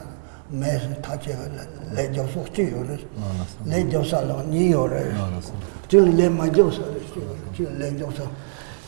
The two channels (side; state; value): left; silent; digital silence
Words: 매서 타체가 레저 속지요를 레저살로 니요를 줄레 마저서 레저서.